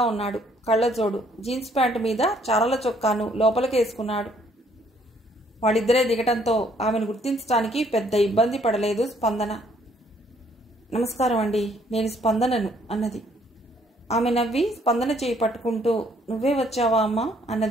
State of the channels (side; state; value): both; normal; correlation 0.65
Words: ఉన్నాడు. కళ్ళజోడు, జీన్స్ ప్యాంటు మీద చారల చొక్కాను లోపలికేసుకున్నాడు. వాళ్ళిద్దరే దిగటంతో ఆమెను గుర్తించడానికి పెద్ద ఇబ్బంది పడలేదు స్పందన. నమస్కారం అండి, నేను స్పందనను అన్నది. ఆమె నవ్వి స్పందన చేయి పట్టుకుంటూ నువ్వే వచ్చావా అమ్మా